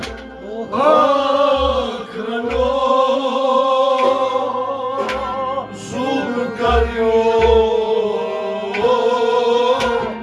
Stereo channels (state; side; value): identical; both; correlation 1.00